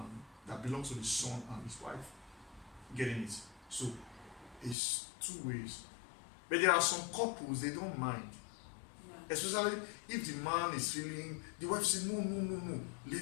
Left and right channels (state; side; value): drops out; right; at 4.8 s